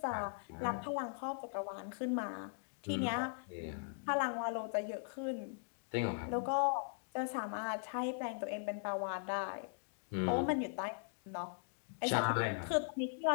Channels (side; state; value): right; silent; digital silence